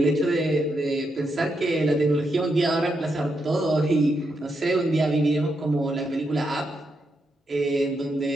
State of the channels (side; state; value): both; normal; correlation 0.82